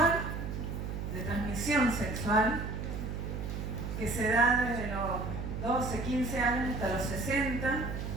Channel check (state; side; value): noise; right; hum, 5 dB below the sound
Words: de transmisión sexual, que se da desde los 12, 15 años hasta los 60,